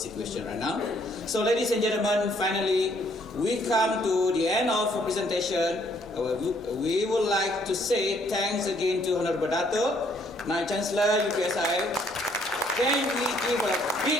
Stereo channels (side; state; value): both; normal; correlation 0.66